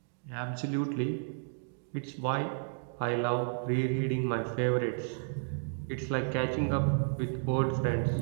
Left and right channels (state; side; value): silent; left; digital silence